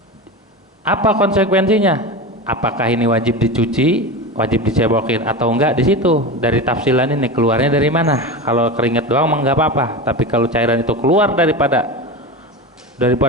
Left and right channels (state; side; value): normal; both; correlation 0.24